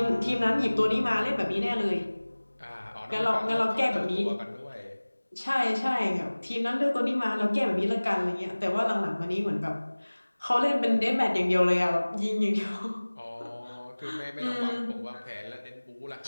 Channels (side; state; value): both; inverted; correlation -1.00